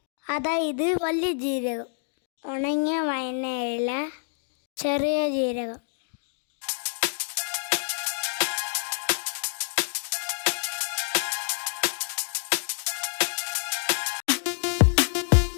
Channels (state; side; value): silent; right; digital silence